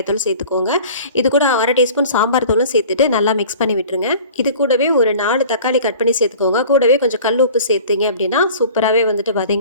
தூள் சேர்த்துக்கோங்க. இது கூட 1/2 டீஸ்பூன் சாம்பார் தூளும் சேர்த்துட்டு நல்லா மிக்ஸ் பண்ணி விட்டுருங்க. இது கூடவே ஒரு 4 தக்காளி கட் பண்ணி சேர்த்துக்கோங்க. கூடவே கொஞ்சம் கல் உப்பு சேர்த்துங்க அப்படின்னா சூப்பராகவே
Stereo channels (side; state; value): both; inverted; correlation -0.44